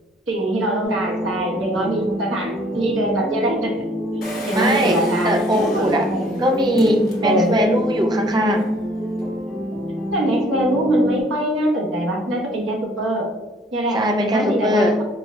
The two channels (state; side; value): normal; both; correlation 0.59